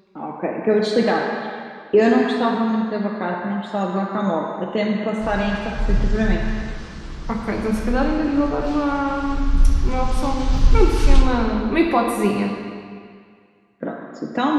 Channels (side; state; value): both; identical; correlation 1.00